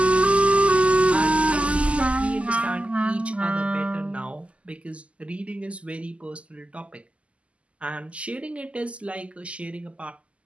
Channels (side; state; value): left; late; 0.060 ms